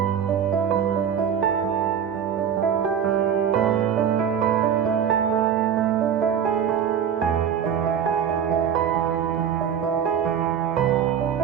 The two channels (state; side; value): quieter; left; 8.3 dB